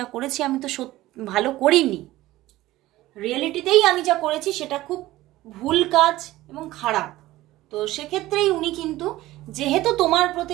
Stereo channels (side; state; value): left; quieter; 16.8 dB